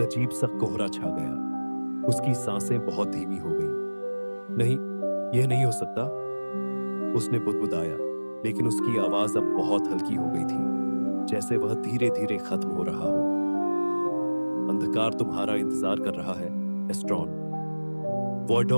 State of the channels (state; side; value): inverted; both; correlation -1.00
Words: सा कोहरा छा गया। उसकी सांसें बहुत धीमी हो गईं। नहीं, यह नहीं हो सकता, उसने बुदबुदाया, लेकिन उसकी आवाज अब बहुत हल्की हो गई थी, जैसे वह धीरे धीरे खत्म हो रहा हो। अंधकार तुम्हारा इंतजार कर रहा है एस्ट्रॉन।